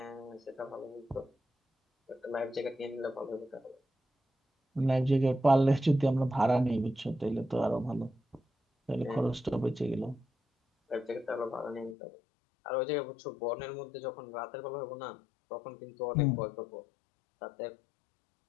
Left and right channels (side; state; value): right; drops out; at 12.0 s